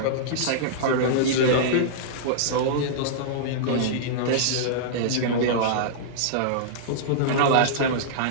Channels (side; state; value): both; different; correlation -0.02